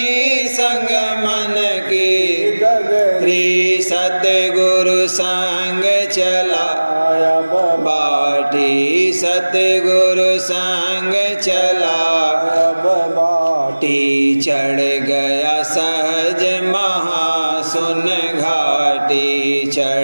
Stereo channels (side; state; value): both; inverted; correlation -1.00